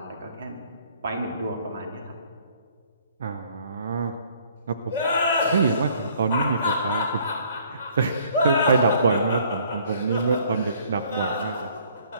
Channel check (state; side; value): inverted; both; correlation -0.59